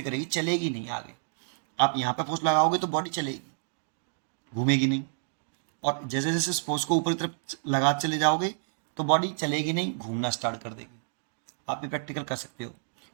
करेगी, चलेगी नहीं आगे। आप यहाँ पे फोर्स लगाओगे तो बॉडी चलेगी, घूमेगी नहीं। और जैसे जैसे इस फोर्स को ऊपरी तरफ लगा चले जाओगे तो बॉडी चलेगी नहीं, घूमना स्टार्ट कर देगी। आप भी प्रैक्टिकल कर सकते हो।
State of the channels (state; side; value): silent; left; digital silence